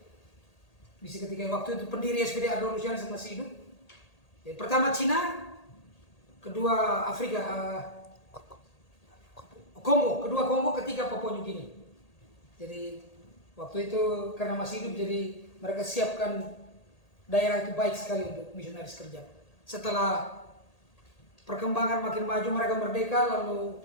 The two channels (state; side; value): late; right; 1.8 ms